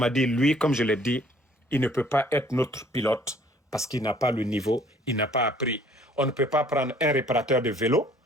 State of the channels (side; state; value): both; normal; correlation 0.58